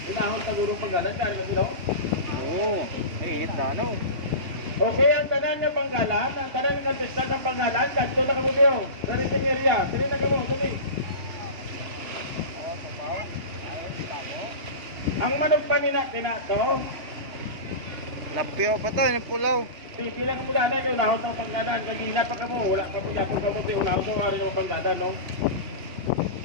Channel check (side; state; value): left; late; 2.7 ms